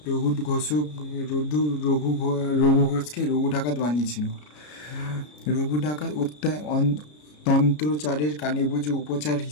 রঘু ঘোষকে রঘু ডাকাত বানিয়েছিল। রঘু ডাকাত তন্ত্রচারের কানে-বুঝে উপচার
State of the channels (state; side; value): late; right; 33 ms